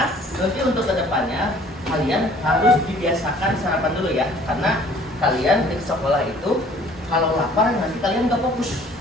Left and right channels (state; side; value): normal; both; correlation 0.54